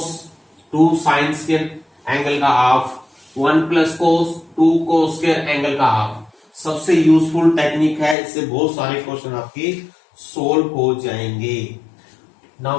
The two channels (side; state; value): right; drops out; at 8.2 s